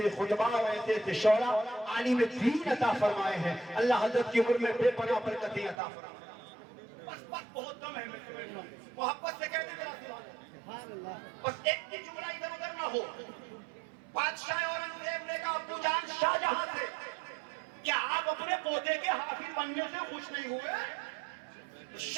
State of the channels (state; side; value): drops out; left; at 5.8 s